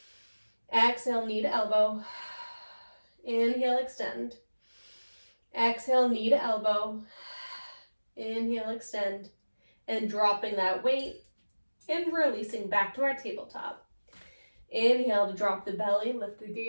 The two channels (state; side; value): inverted; both; correlation -1.00